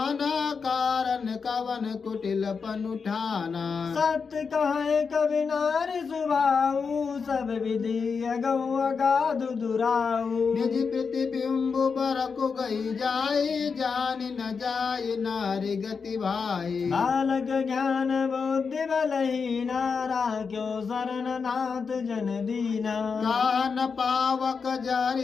कारण कवन कुटिल पन उठाना। सत्य कहे कवि नारी सुभाऊ सब विधि अगौ अगाधु दुराऊ। निज प्रतिबिंब बरकु गई जाई जान न जाई नारी गति भाई। बालक ज्ञान बुद्धि बलहीना राख्यो शरण नाथ जन दीना। कान पावक जारि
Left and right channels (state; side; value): quieter; right; 5.4 dB